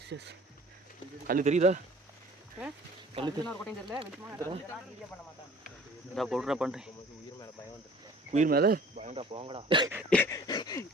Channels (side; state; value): both; normal; correlation 0.49